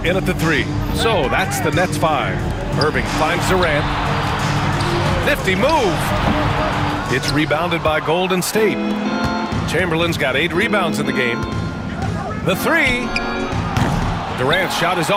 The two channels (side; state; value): both; identical; correlation 1.00